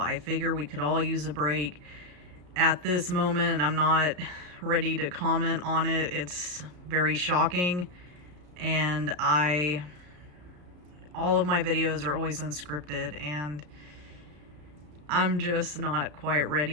figure we could all use a break at this moment. I'm not ready to comment on it. It's very shocking, and all of my videos are always unscripted, and I'm just not quite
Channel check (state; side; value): late; left; 34 ms